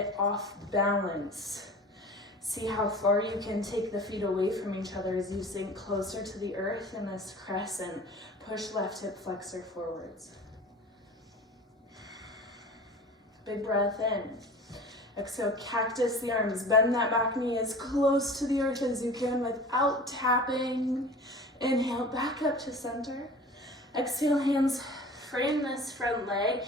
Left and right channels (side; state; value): both; normal; correlation 0.40